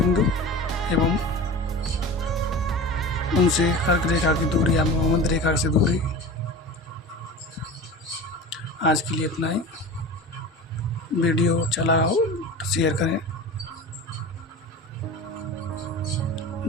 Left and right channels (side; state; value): both; normal; correlation 0.33